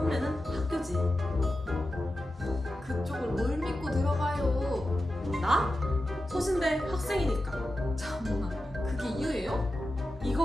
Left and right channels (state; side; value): normal; both; correlation 0.92